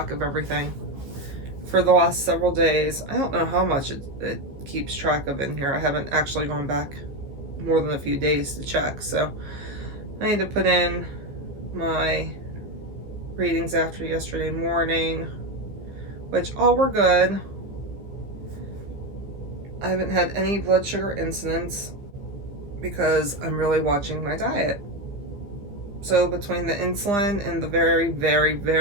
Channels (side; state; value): left; late; 15 ms